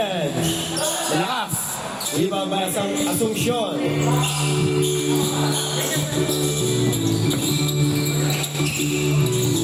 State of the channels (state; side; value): identical; both; correlation 1.00